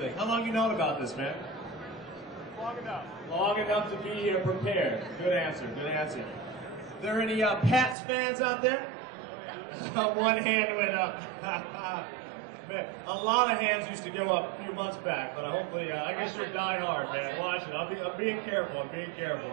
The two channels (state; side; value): drops out; left; at 8.0 s